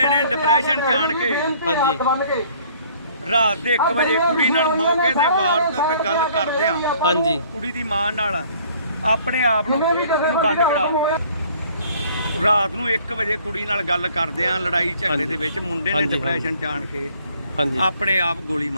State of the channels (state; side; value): inverted; both; correlation -0.58